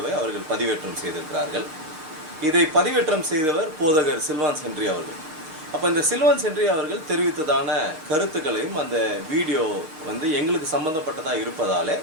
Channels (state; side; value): late; left; 6.4 ms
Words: அவர்கள் பதிவேற்றம் செய்திருக்கிறார்கள். இதை பதிவேற்றம் செய்தவர் போதகர் சில்வான் சென்ட்ரி அவர்கள். அப்போ இந்த சில்வான் சென்ட்ரி அவர்கள் தெரிவித்ததான கருத்துக்களையும் அந்த வீடியோ எங்களுக்கு சம்பந்தப்பட்டதாக இருப்பதாலே